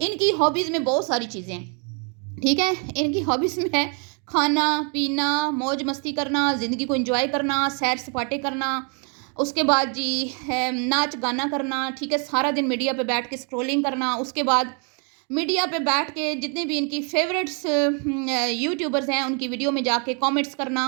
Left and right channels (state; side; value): quieter; left; 38.3 dB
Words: इनकी हॉबीज़ में बहुत सारी चीज़ें हैं, ठीक है? इनकी हॉबीज़ में है खाना पीना, मौज मस्ती करना, ज़िंदगी को एंजॉय करना, सैर सपाटे करना, उसके बाद जी है नाच गाना करना, ठीक है? सारा दिन मीडिया पे बैठ के स्क्रॉलिंग करना, उसके बाद मीडिया पे बैठ के जितने भी इनकी फेवरेट्स यूट्यूबर्स हैं उनकी वीडियो में जाके कमेंट्स करना,